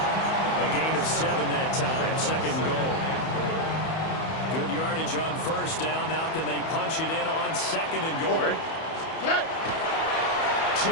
A gain of 7 that time. 2nd goal. Good yardage on first down. Now can they punch it in on 2nd and goal?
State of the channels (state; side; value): late; right; 31 ms